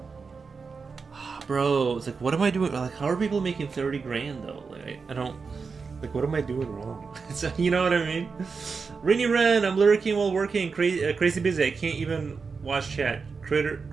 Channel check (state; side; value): quieter; left; 5.0 dB